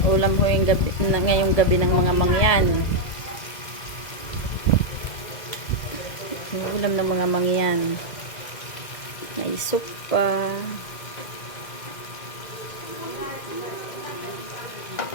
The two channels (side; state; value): right; late; 2.0 ms